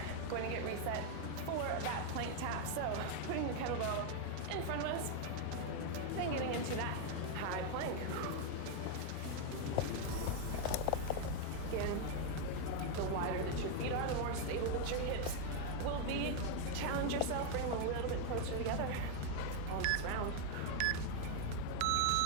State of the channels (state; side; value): different; both; correlation 0.00